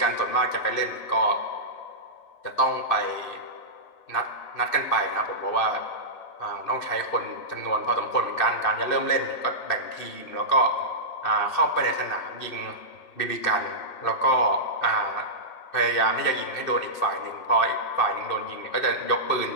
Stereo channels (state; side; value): late; right; 2.7 ms